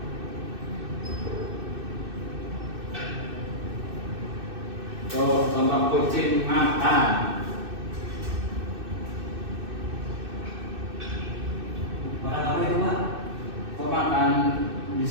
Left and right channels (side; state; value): left; late; 2.6 ms